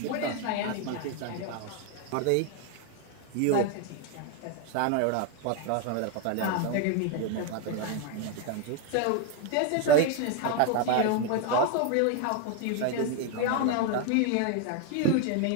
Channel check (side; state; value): both; different; correlation 0.01